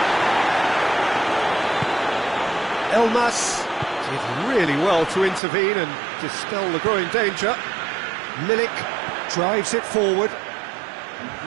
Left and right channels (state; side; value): drops out; left; at 5.4 s